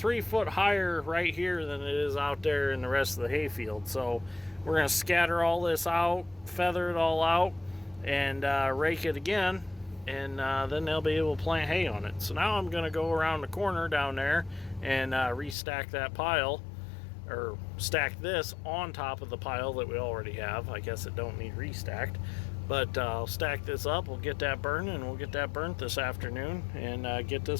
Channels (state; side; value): drops out; right; at 15.6 s